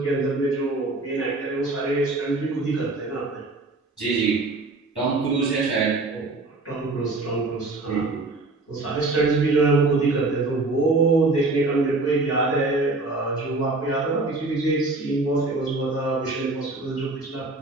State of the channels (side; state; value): left; quieter; 3.3 dB